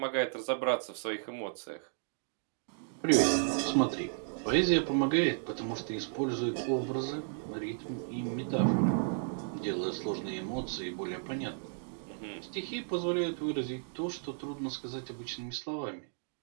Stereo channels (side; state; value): left; silent; digital silence